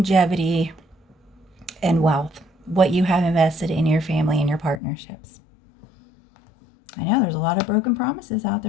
and wealth, what you have invested in your family and your partnerships. I know there's a lot of broken promises out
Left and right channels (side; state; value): right; drops out; at 4.8 s